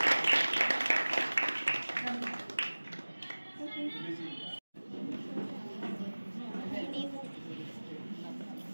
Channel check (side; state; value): both; inverted; correlation -1.00